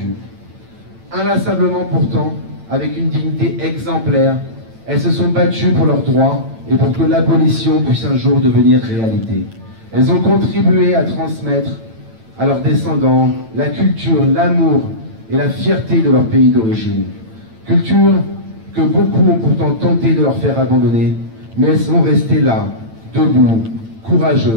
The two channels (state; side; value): late; left; 8.9 ms